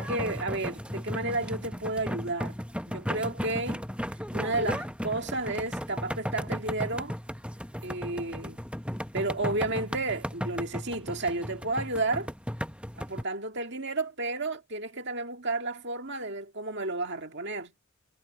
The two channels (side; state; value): both; normal; correlation -0.02